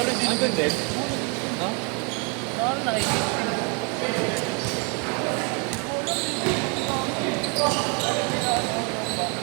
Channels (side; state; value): left; quieter; 34.8 dB